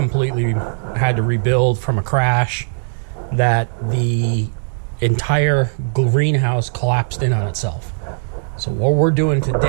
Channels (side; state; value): left; silent; digital silence